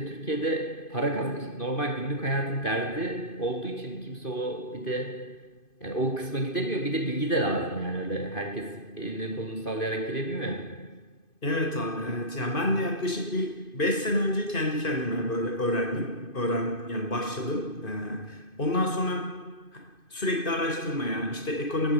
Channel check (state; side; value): late; right; 2.5 ms